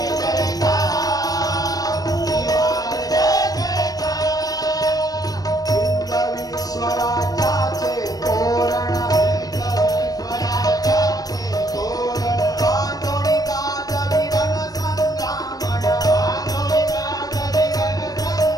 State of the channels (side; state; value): right; late; 0.18 ms